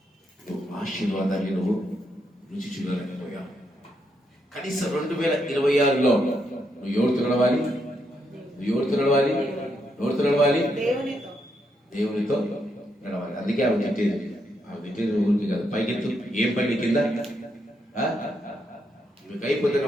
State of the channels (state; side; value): normal; both; correlation 0.79